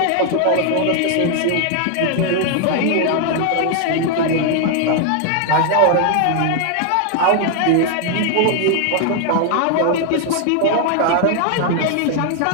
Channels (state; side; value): different; both; correlation 0.00